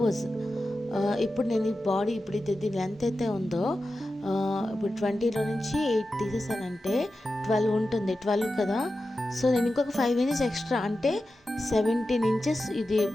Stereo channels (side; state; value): both; normal; correlation 0.92